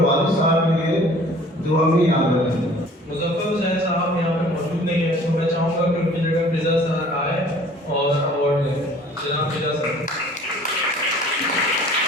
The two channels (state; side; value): normal; both; correlation 0.51